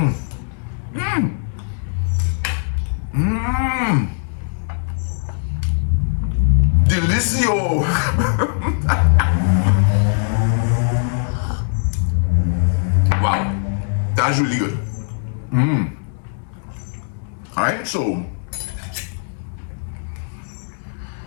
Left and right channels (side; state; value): right; silent; 64 dB below the other